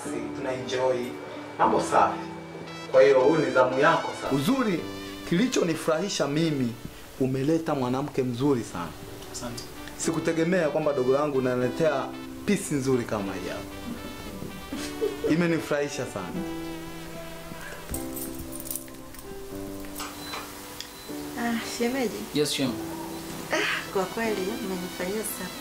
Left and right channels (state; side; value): identical; both; correlation 1.00